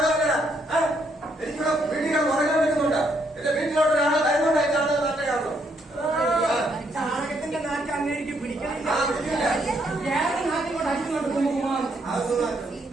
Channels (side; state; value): both; normal; correlation 0.73